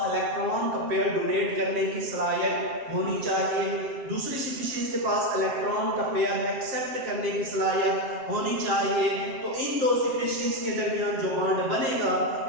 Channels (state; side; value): late; left; 7.6 ms